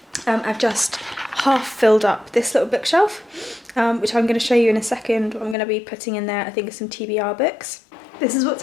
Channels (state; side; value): drops out; right; at 5.6 s